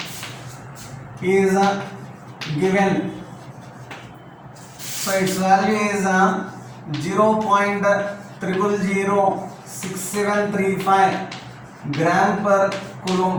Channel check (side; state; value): both; identical; correlation 1.00